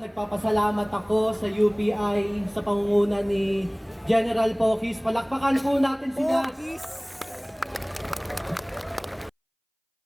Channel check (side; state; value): both; identical; correlation 1.00